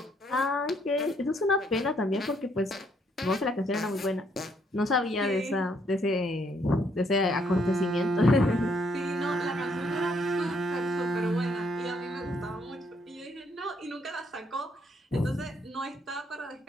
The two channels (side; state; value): both; normal; correlation 0.70